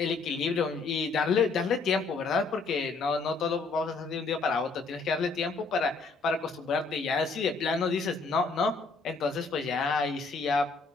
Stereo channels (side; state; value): right; quieter; 4.2 dB